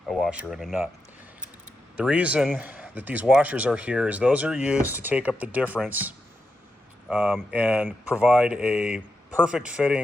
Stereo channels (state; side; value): normal; both; correlation 0.87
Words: and a nut. The reason that these washers are here is those are used to take up the difference and provide a perfect